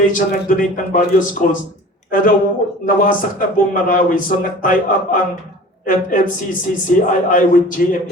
nag-donate ng various schools. Pero nawasak na buong Marawi, so nag-tie up ang FFCCCII with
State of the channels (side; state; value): both; normal; correlation 0.42